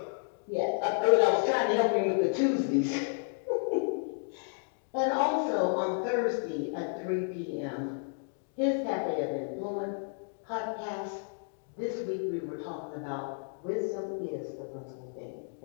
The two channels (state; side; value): silent; right; 57 dB below the other